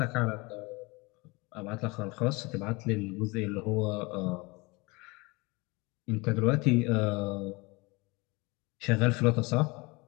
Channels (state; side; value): quieter; right; 25.7 dB